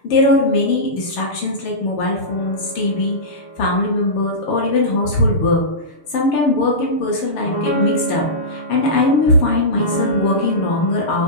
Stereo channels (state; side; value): late; right; 6.7 ms